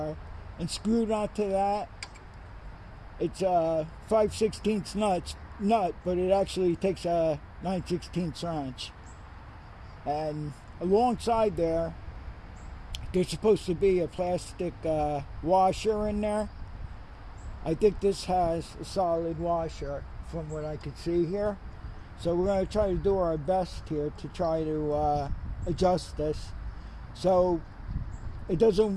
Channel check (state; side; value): identical; both; correlation 1.00